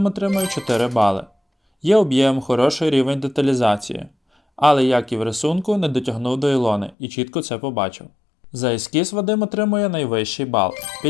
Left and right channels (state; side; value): drops out; right; at 7.0 s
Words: отримує 4 бали. Є об'єм, хороший рівень деталізації. Але, як і в рисунку, не дотягнув до Ілони і чітко це побачив. За ескіз Вадим отримує найвищий бал –